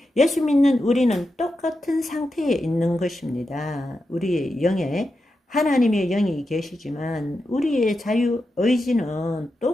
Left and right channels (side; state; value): both; normal; correlation 0.89